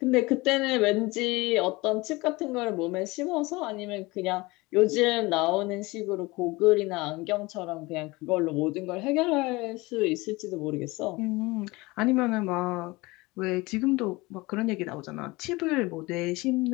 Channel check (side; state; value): right; quieter; 22.6 dB